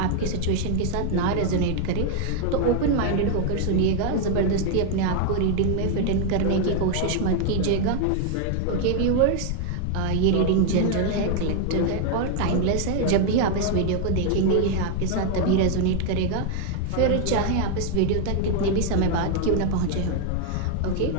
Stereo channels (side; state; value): both; different; correlation 0.00